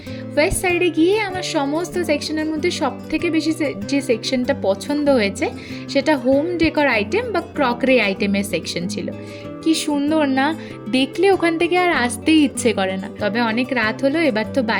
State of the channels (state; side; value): identical; both; correlation 1.00